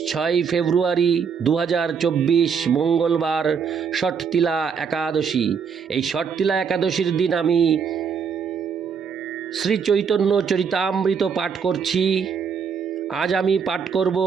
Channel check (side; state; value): left; quieter; 6.4 dB